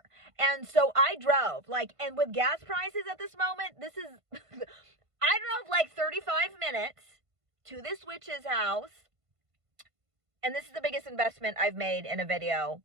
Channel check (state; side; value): late; left; 1.5 ms